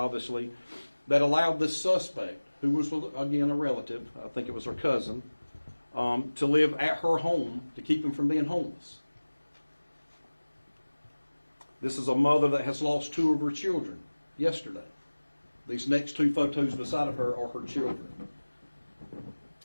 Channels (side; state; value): both; inverted; correlation -1.00